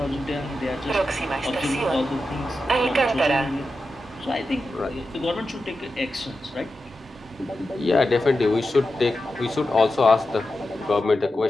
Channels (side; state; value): both; normal; correlation 0.90